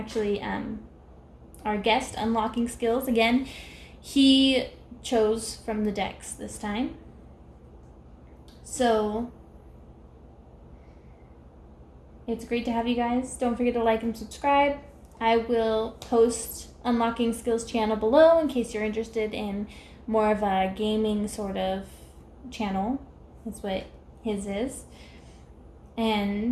our guest unlocking skills. Again, he chose from the decks this time. So it's great to have you guys. Don't forget to like and subscribe. I will post Unlocking Skills channel below in case you're interested in more of a gaming sort of channel. That's what his is.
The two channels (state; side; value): identical; both; correlation 1.00